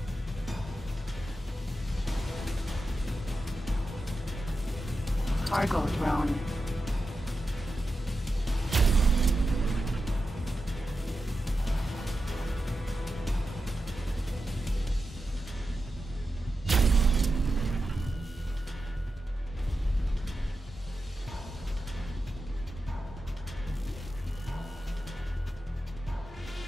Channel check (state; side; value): normal; both; correlation 0.90